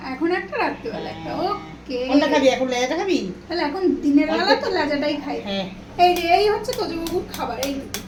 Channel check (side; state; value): both; identical; correlation 1.00